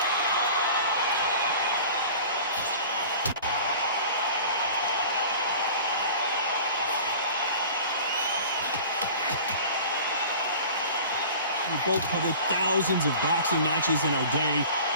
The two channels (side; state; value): both; inverted; correlation -0.42